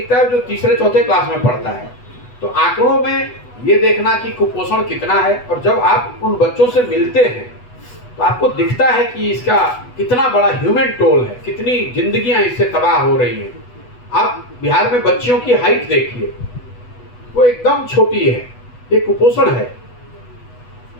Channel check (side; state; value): right; late; 8.1 ms